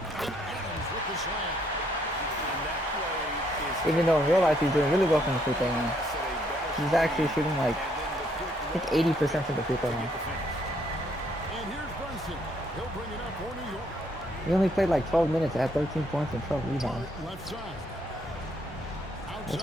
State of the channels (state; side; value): normal; both; correlation 0.70